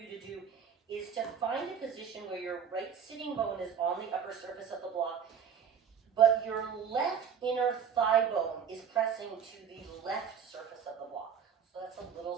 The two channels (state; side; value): quieter; left; 7.6 dB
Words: to do is to find a position where your right sitting bone is on the upper surface of the block, but your left inner thigh bone is pressing to the left surface of the block. So that's a little